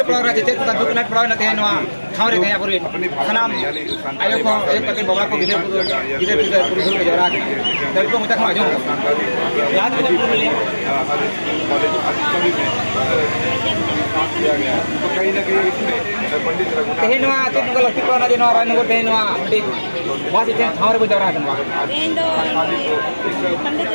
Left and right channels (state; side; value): inverted; both; correlation -1.00